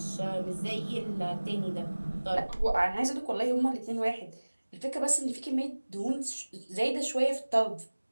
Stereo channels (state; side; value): inverted; both; correlation -1.00